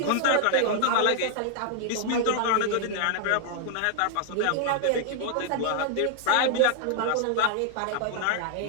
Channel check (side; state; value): both; different; correlation 0.00